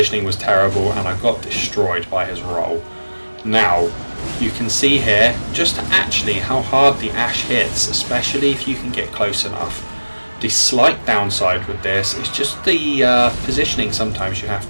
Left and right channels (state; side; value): inverted; both; correlation -1.00